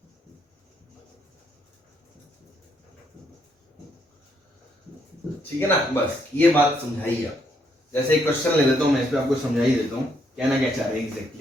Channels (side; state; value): both; normal; correlation 0.73